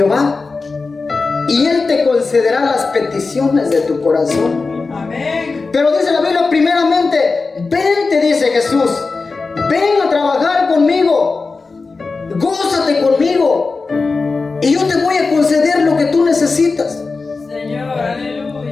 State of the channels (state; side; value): quieter; right; 4.1 dB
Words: y Él te concederá las peticiones de tu corazón. Amén. Pero dice la Biblia, primeramente, vente, dice Jesús, ven a trabajar conmigo, gózate conmigo, y yo te voy a conceder lo que tú necesitas. Señor,